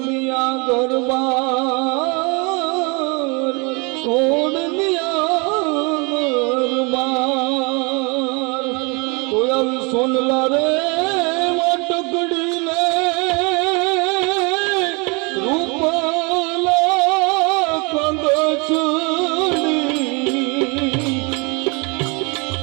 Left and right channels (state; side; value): quieter; left; 30.3 dB